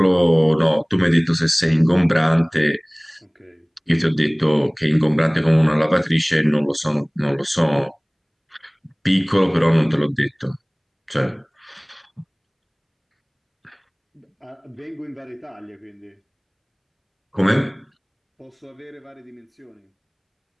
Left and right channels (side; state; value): both; identical; correlation 1.00